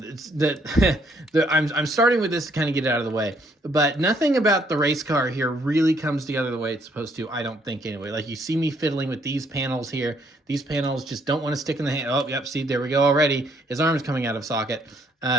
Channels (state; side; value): normal; both; correlation 0.68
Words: that I'm starting with this to kind of get it out of the way, but nothing about the race car here really comes together the way it's supposed to, I don't think, anyway. Like, you see me fiddling with these panels here. These panels just don't want to stick in the hand. Oh, yep, see, there we go already. His arm's coming out of socket.